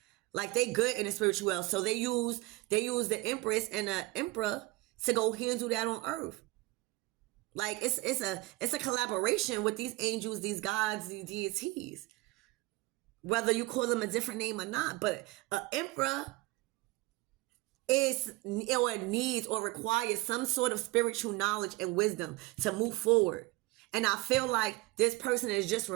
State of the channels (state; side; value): quieter; left; 21.4 dB